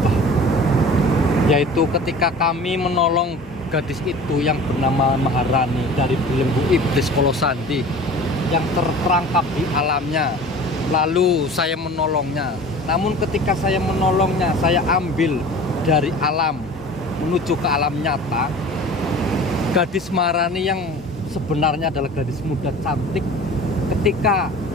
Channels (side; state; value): both; normal; correlation 0.41